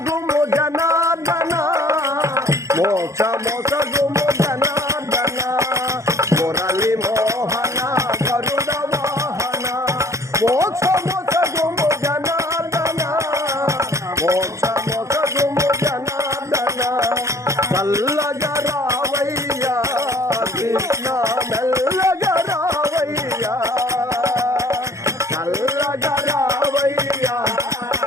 జనార్దన మోక్ష మోసగుము జనార్దన మురళి మోహన గరుడ వాహన మోక్ష మోసగుము జనార్దన మోక్ష మోసగుము జనార్దన చల్లగా రావయ్యా కృష్ణ మెల్లగా రావయ్యా చల్లగా రావయ్యా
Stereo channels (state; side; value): late; left; 0.15 ms